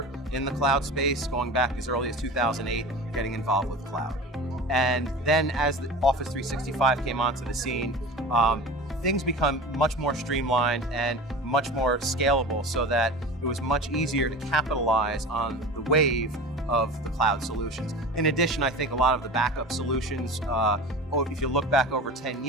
in the cloud space, going back as early as 2008, getting involved with cloud. And then as the Office 365 came onto the scene, things become much more streamlined and much more scalable so that it was much easier to capitalize on the wave of the cloud solutions. In addition, I think a lot of the backup solutions, if you look back over 10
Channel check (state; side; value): normal; both; correlation 0.33